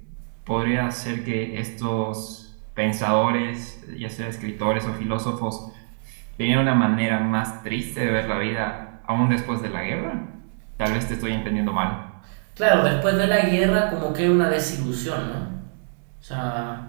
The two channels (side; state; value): left; silent; digital silence